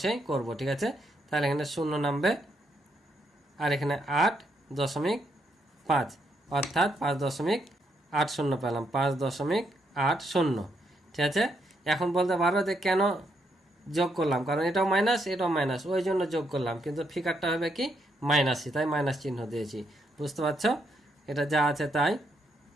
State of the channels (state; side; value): normal; both; correlation 0.77